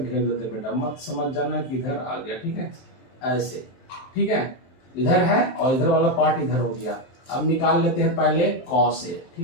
देते बेटा, मत समझ जाना कि इधर आ गया, ठीक है, ऐसे, ठीक है, इधर है और इधर वाला पार्ट इधर हो गया। अब निकाल लेते हैं पहले कॉस ए,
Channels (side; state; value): right; late; 23 ms